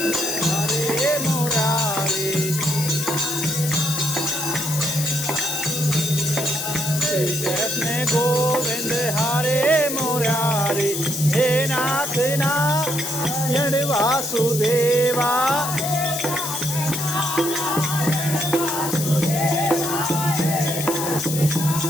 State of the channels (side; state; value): left; noise; hiss, 5 dB below the sound